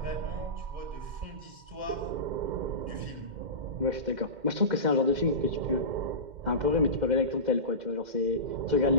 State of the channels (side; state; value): left; late; 2.1 ms